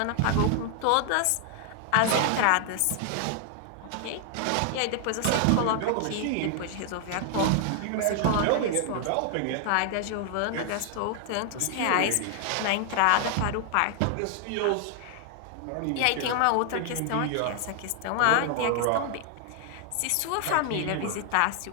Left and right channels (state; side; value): different; both; correlation 0.00